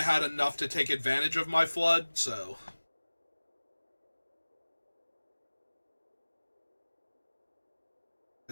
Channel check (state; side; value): inverted; both; correlation -1.00